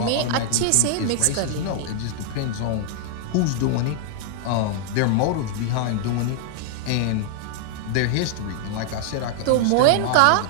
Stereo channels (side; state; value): both; different; correlation -0.01